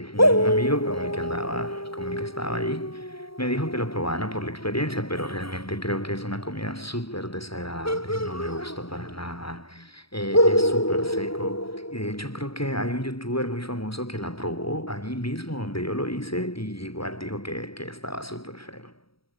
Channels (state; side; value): late; right; 0.75 ms